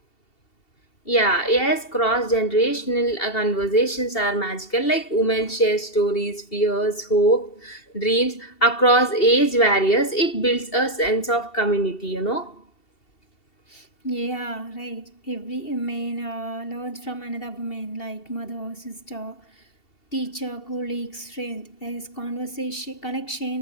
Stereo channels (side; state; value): right; late; 2.7 ms